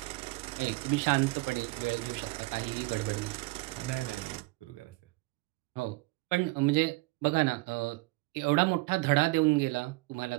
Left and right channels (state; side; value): quieter; left; 23.3 dB